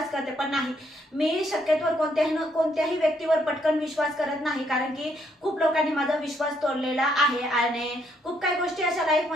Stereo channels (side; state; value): both; normal; correlation 0.72